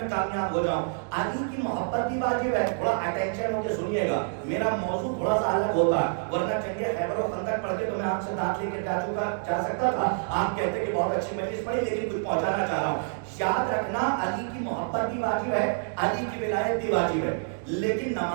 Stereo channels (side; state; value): left; silent; digital silence